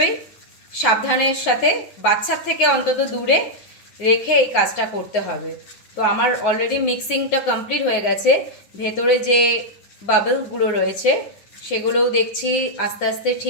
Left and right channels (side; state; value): right; late; 9.6 ms